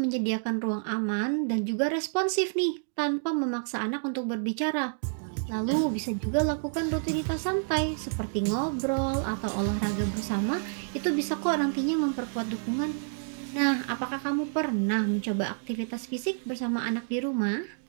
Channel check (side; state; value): left; silent; digital silence